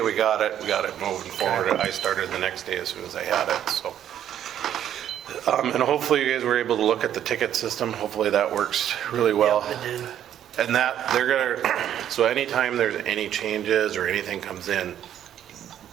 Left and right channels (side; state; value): left; quieter; 10.5 dB